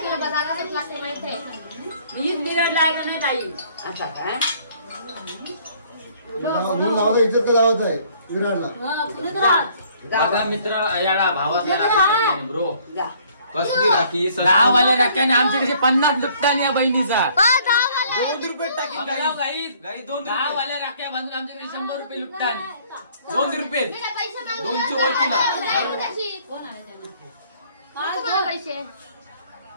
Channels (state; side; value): inverted; both; correlation -0.60